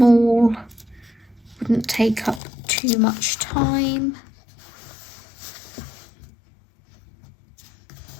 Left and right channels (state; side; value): drops out; right; at 2.4 s